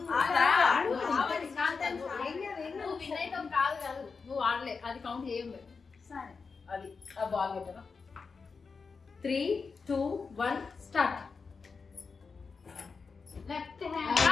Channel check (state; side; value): quieter; right; 4.9 dB